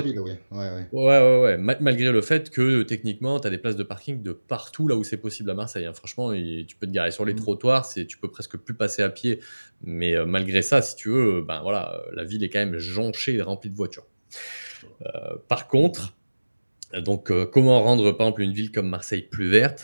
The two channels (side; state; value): both; inverted; correlation -1.00